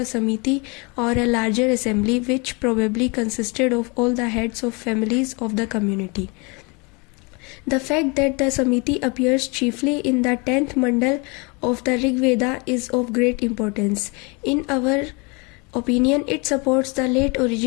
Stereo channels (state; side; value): quieter; right; 29.9 dB